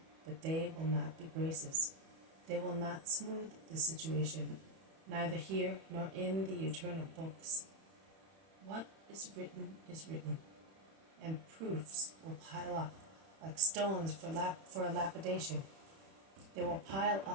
But they will not be graces. They will not smooth the situation, neither here nor in the eternal books. What is written, and proofs will pile up like stones for a lapidation. They will pile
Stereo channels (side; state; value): left; late; 31 ms